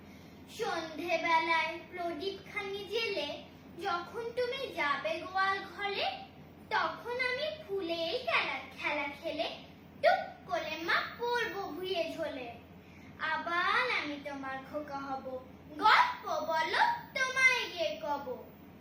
সন্ধে বেলায় প্রদীপ খানি জেলে যখন তুমি যাবে গোয়াল ঘরে, তখন আমি ফুলের খেলা খেলে টুক করে মা পড়বো ভুঁয়ে ঝোলে। আবার আমি তোমার খোকা হব, গল্প বলো তোমায় গিয়ে কব।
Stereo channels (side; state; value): both; identical; correlation 1.00